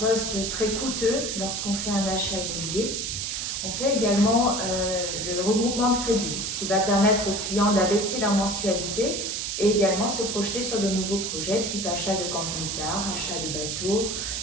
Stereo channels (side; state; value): right; noise; hiss, 3 dB below the sound